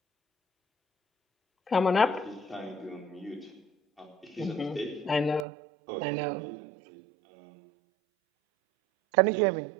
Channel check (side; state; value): left; drops out; at 5.5 s